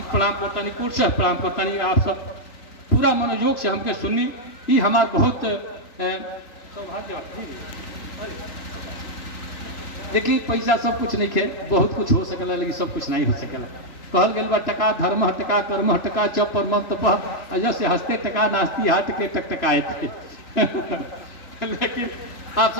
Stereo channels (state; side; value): late; right; 2.9 ms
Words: प्रणाम करता नहीं, कुर्सा प्रणाम करता नहीं। आप सब पूरा मनोयोग से हमके सुनी, ये हमार बहुत सौभाग्य। देखिए पैसा सब कुछ नहीं खे, बहुत कुछ हो सकेला लेकिन सब कुछ नहीं हो सकेला। कहल गल बा टका धर्म टका कर्म टका चप पर मम तप, से हंसते टका नास्ती हाथ के टकटकाए थे। लेकिन आप